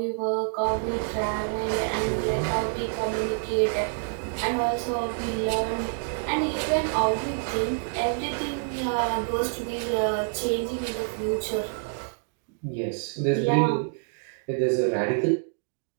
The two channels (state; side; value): silent; left; digital silence